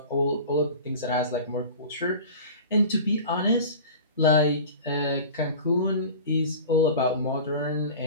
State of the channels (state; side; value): inverted; both; correlation -0.37